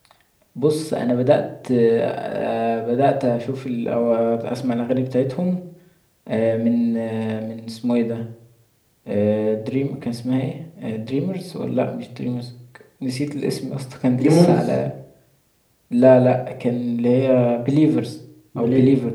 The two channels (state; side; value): identical; both; correlation 1.00